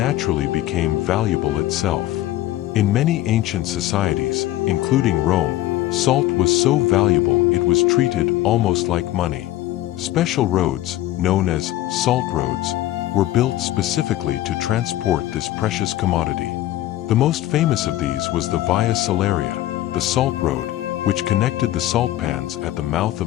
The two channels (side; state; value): right; quieter; 14.8 dB